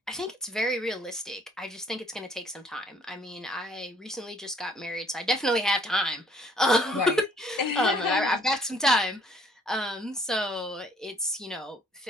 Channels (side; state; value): both; normal; correlation 0.61